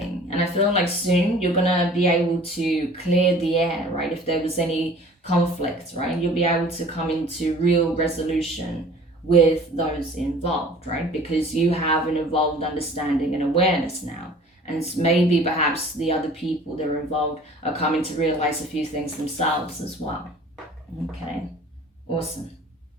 And I feel like soon you're gonna be able to clear the air, right? If there was any conflict, right? You'll be able to come into real resolution with those involved, right? Because you have an evolved understanding and awareness now. And maybe perhaps the other people that are involved are coming to realize a few things themselves as well. Okay, awesome.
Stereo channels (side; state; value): both; normal; correlation 0.48